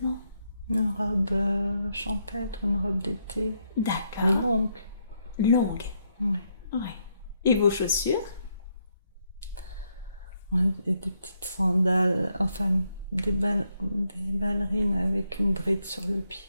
Une robe champêtre, une robe d'été. D'accord. Longue. Longue. Oui. Oui. Et vos chaussures? Ouais, et des petites sandales, enfin des ballerines avec une bride sur le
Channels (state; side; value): inverted; both; correlation -0.77